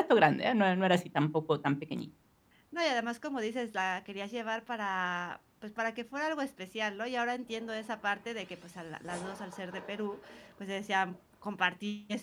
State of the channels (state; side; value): identical; both; correlation 1.00